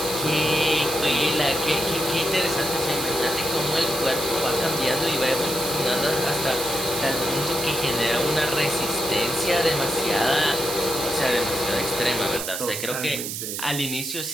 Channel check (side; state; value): right; noise; hiss, 5 dB below the sound